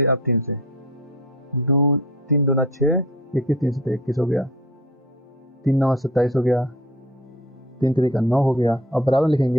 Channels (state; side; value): normal; both; correlation 0.43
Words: आप 3 से, 2 3 दूना 6, 21 3 से 21 हो गया, 3 9 27 हो गया, 3 3 का 9 हो गया। अब बराबर लिखेंगे